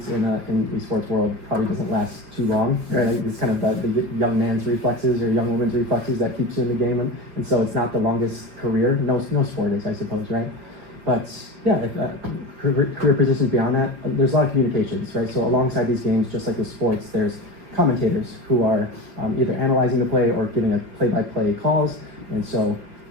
in the esports world probably doesn't last too long, right? It's kind of the young man's reflexes or young woman's reflexes that keeps you in the game, and so it's not the longest career. No sport is, I suppose, right? But career positions beyond that, there's a lot of communications, right? So alongside these games, just like with sports, there's commentators who are either analyzing the play or giving a play-by-play calls, and so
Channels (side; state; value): left; late; 5.6 ms